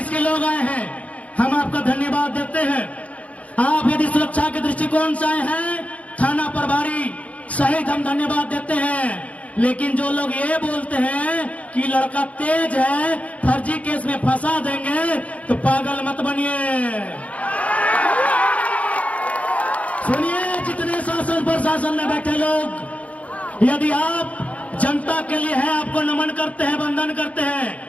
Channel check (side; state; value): right; late; 0.067 ms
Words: के लोग आए हैं, हम आपका धन्यवाद देते हैं। दृष्टिकोण से आए हैं, थाना प्रभारी सहित हम धन्यवाद देते हैं। लेकिन जो लोग ये बोलते हैं कि लड़का तेज है, फर्जी केस में फंसा देंगे, तो पागल मत बनिए। सुनिए, जितने शासन प्रशासन में बैठे लोग, यदि आप जनता के लिए है, आपको नमन करते हैं, वंदन करते हैं,